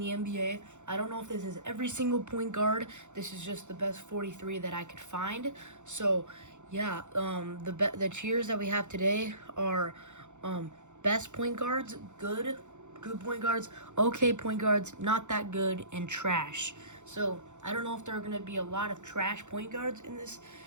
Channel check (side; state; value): left; late; 0.84 ms